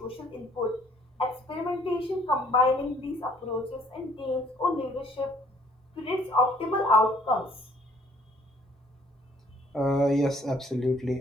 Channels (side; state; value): both; normal; correlation 0.60